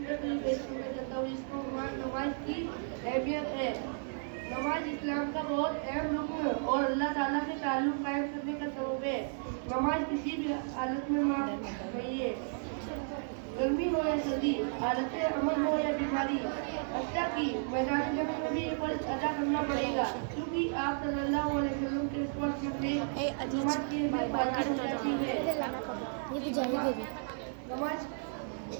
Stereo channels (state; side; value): silent; left; digital silence